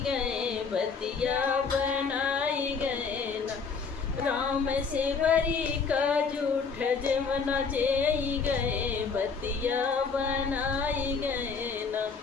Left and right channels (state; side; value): quieter; right; 5.3 dB